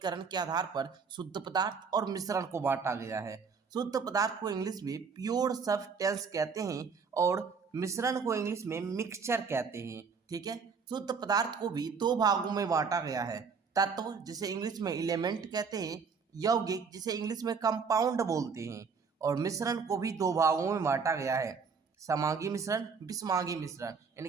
के आधार पर शुद्ध पदार्थ और मिश्रण को बांटा गया है। शुद्ध पदार्थ को इंग्लिश में प्योर सब्सटेंस कहते हैं और मिश्रण को इंग्लिश में मिक्सचर कहते हैं। ठीक है। शुद्ध पदार्थ को भी दो भागों में बांटा गया है, तत्व जिसे इंग्लिश में एलिमेंट कहते हैं, यौगिक जिसे इंग्लिश में कंपाउंड बोलते हैं, और मिश्रण को भी दो भागों में बांटा गया है, समांगी मिश्रण, विषमांगी मिश्रण, यानी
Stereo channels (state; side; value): quieter; left; 5.5 dB